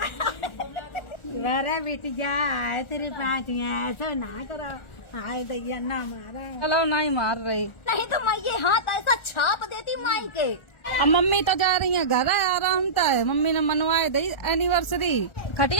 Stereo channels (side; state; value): right; late; 1.4 ms